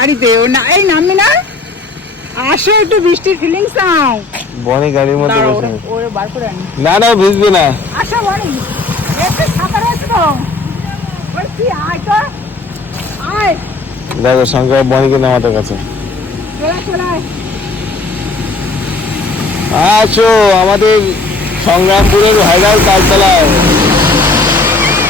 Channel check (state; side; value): quieter; right; 3.5 dB